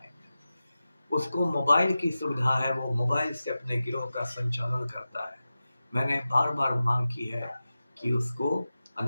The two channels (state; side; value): inverted; both; correlation -0.94